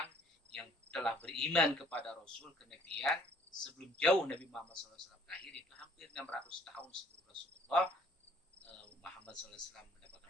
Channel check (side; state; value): both; normal; correlation 0.59